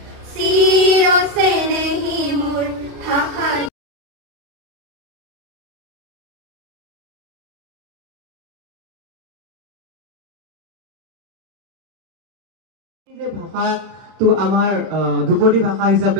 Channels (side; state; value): left; late; 32 ms